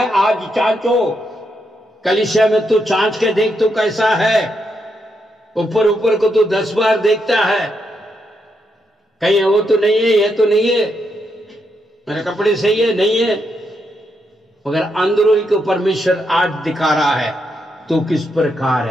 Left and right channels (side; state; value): both; normal; correlation 0.81